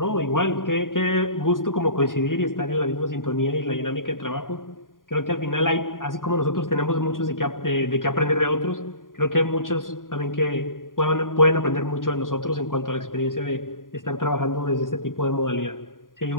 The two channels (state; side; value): late; right; 0.90 ms